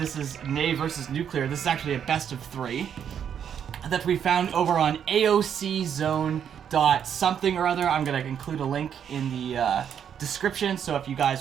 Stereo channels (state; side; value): quieter; left; 8.5 dB